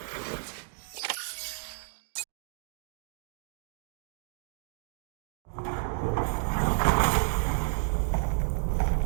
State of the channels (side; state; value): left; silent; digital silence